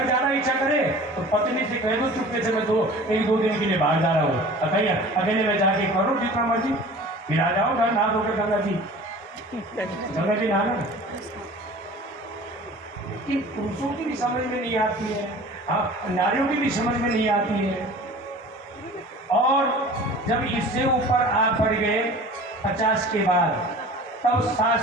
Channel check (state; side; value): normal; both; correlation 0.42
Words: ज्यादा इच्छा करे तो पत्नी से कह दो चुपके से, मैं एक दो दिन के लिए बाहर जा रहा हूँ, अकेले में जाके करो जितना मर्जी, फिर आ जाओ घर नहा धोकर गंगा जी नहाना। लेकिन पुरुषों की भी समझ में नहीं आती है, हाँ, नारियों की भी समझ में नहीं आती है। और जब इससे ऊपर आप बढ़ गए 50 के बाद, तब